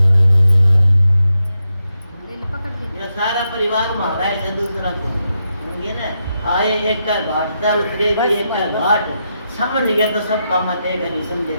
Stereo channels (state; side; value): inverted; both; correlation -0.84